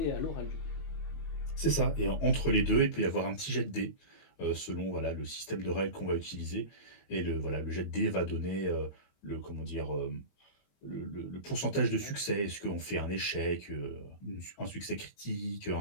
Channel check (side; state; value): right; late; 21 ms